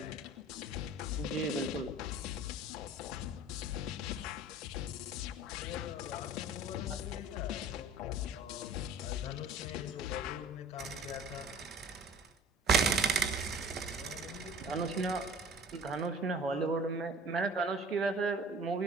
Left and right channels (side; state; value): both; normal; correlation 0.44